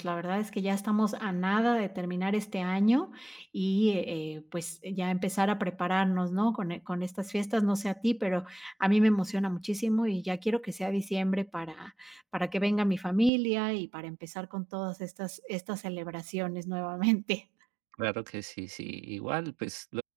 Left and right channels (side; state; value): left; drops out; at 13.3 s